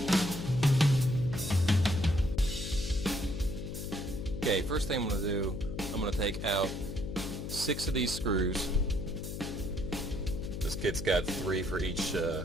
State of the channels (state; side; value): noise; left; hum, 6 dB below the sound